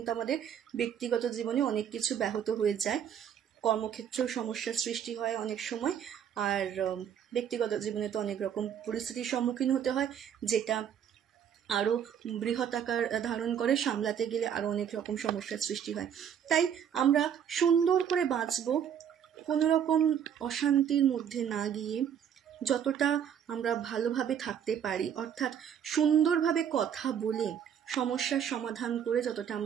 আমাদের ব্যক্তিগত জীবনে অনেক কিছু ব্যাহত হয়ে যায়, কর্মক্ষেত্রেও সমস্যার সৃষ্টি হয় অনেক সময়, আর ব্যক্তিগত জীবনে তো অনেক রকম পরিস্থিতির সম্মুখীন হতে হয়, যেটা আরও বৃহৎ আকার ধারণ করে, সামলাতে গেলে আরও অনেক রকম সমস্যার সৃষ্টি হয়। তাই আমরা সুন্দর করে বাঁচবো, কোনো রকম অশান্তির মধ্যে না গিয়ে যতটা আমরা ভালোভাবে থাকতে পারি, অর্থাৎ সুন্দরভাবে কথা বলে সমস্যার সমাধান করে যতটা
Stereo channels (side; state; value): left; quieter; 8.7 dB